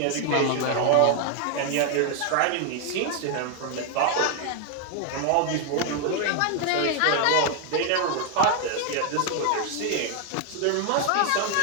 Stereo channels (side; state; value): both; different; correlation 0.01